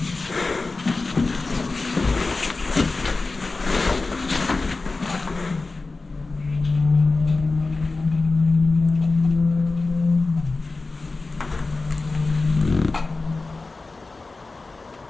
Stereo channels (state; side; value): quieter; right; 3.6 dB